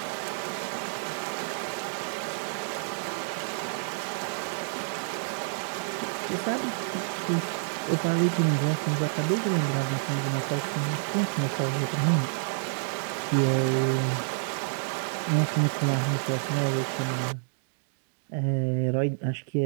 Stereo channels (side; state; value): left; silent; digital silence